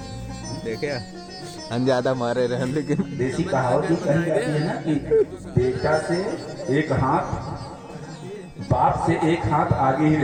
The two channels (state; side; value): identical; both; correlation 1.00